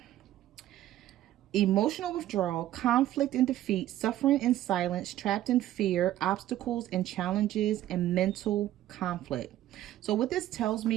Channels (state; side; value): quieter; left; 13.6 dB